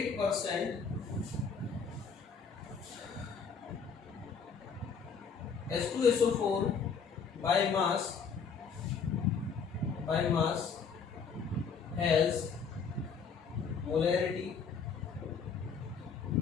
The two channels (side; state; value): right; quieter; 5.9 dB